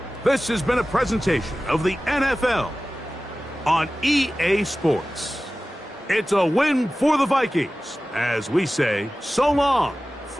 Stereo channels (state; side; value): normal; both; correlation 0.96